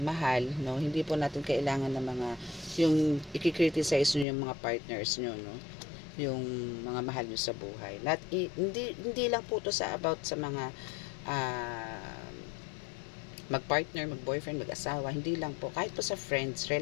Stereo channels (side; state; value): right; drops out; at 4.2 s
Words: no, hindi po natin kailangan ng mga yung i-criticize nyo yung mga partners nyo, no, yung mga mahal nyo sa buhay. Hindi lang po to sa about sa mga mag-partner, mag-boyfriend, mag-asawa, hindi lang po, kahit po sa friends,